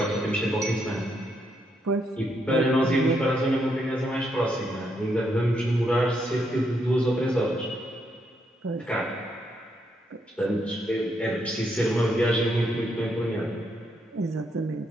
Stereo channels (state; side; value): normal; both; correlation 0.77